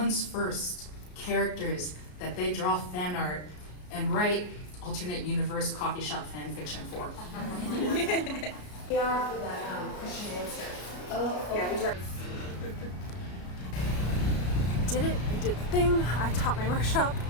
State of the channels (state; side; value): late; right; 33 ms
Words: first characters that they draw fan art and write alternate universe coffee shop fan fiction for. We are for that question answer. Oh, yeah, we tried. Did it. I did the thing. I taught my workshop,